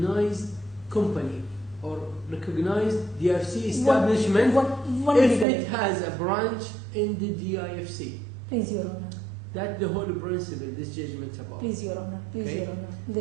company or recognized DFC establishment One if legal. it has a branch in the DIFC. Please, Your Honor. That's the whole principle this judgment's about. Please, Your Honor. Please, Okay. Your Honor.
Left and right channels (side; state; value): left; drops out; at 5.5 s